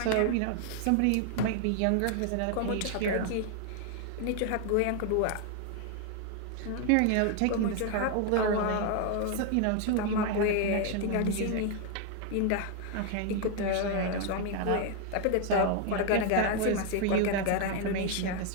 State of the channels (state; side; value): different; both; correlation 0.01